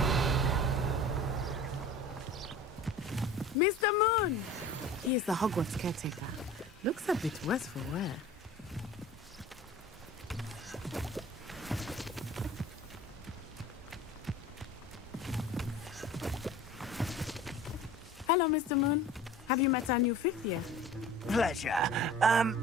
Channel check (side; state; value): both; normal; correlation 0.41